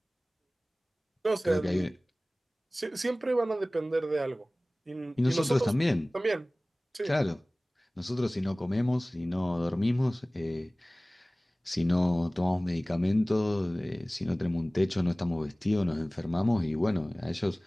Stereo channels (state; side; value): normal; both; correlation 0.98